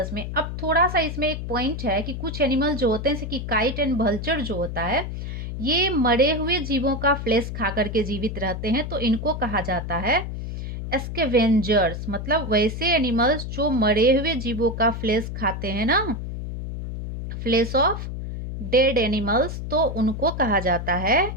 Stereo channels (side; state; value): left; noise; hum, 6 dB below the sound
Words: में। अब थोड़ा सा इसमें एक पॉइंट है कि कुछ एनिमल जो होते हैं जैसे कि काइट एंड वल्चर जो होता है, ये मरे हुए जीवों का फ्लेश खा करके जीवित रहते हैं, तो इनको कहा जाता है स्कैवेंजर्स। मतलब वैसे एनिमल्स जो मरे हुए जीवों का फ्लेश खाते हैं ना, फ्लेश ऑफ डेड एनिमल्स, तो उनको कहा जाता है